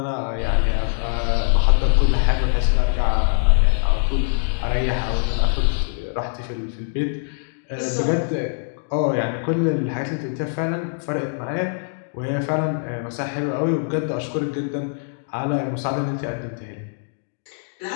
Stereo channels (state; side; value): silent; right; digital silence